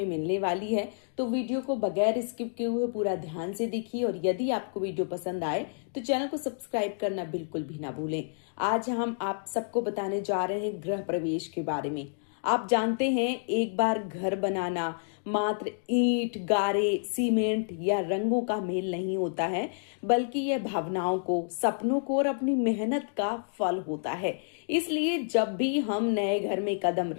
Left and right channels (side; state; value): right; silent; digital silence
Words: मिलने वाली है, तो वीडियो को बगैर स्किप किए हुए पूरा ध्यान से देखिए। और यदि आपको वीडियो पसंद आए तो चैनल को सब्सक्राइब करना बिल्कुल भी ना भूलें। आज हम आप सबको बताने जा रहे हैं गृह प्रवेश के बारे में। आप जानते हैं, एक बार घर बनाना मात्र ईंट, गारे, सीमेंट या रंगों का मेल नहीं होता है, बल्कि यह भावनाओं को, सपनों को और अपनी मेहनत का फल होता है। इसलिए जब भी हम नए घर में कदम